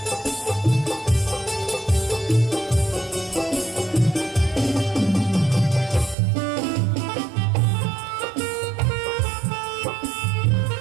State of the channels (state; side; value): drops out; left; at 6.2 s